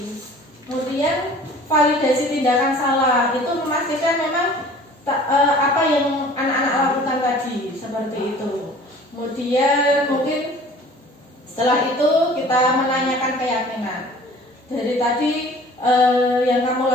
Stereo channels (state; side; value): normal; both; correlation 0.48